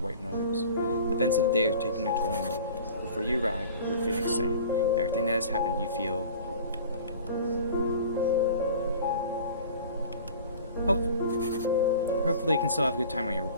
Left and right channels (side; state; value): both; inverted; correlation -0.42